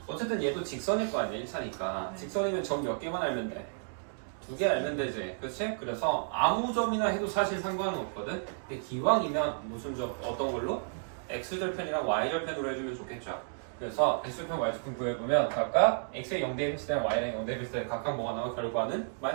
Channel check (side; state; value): left; silent; digital silence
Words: 어쨌든 얘도 직선일 거 아니야 1차니까. 직선이면 점 몇 개만 알면 돼? 2개 알면 되지, 그렇지? 그래서 아무 점이나 해도 사실 상관은 없거든. 근데 기왕이면 무슨 점 어떤 걸로? x절편이랑 y절편으로 해주면 좋겠죠. 그래서 x절편, y절편 구해보면 각각 x에 0 대입했을 때 y랑 0 대입했을 때 각각 뭐가 나와? 결과는